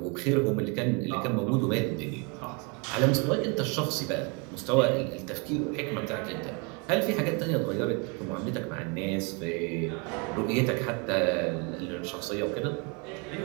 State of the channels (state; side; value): quieter; left; 32.6 dB